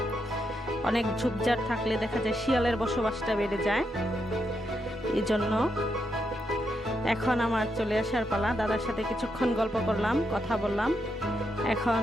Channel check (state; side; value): normal; both; correlation 0.82